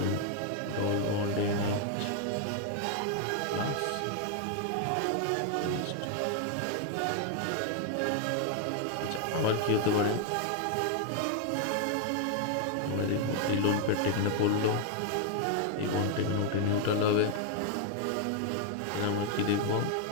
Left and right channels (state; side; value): different; both; correlation 0.00